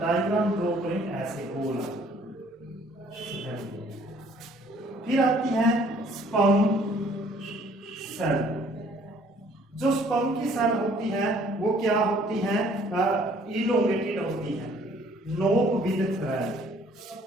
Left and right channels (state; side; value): normal; both; correlation 0.59